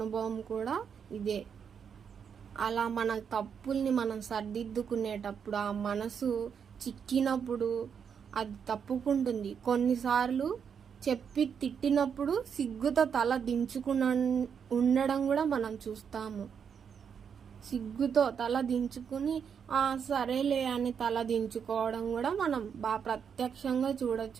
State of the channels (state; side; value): quieter; left; 7.2 dB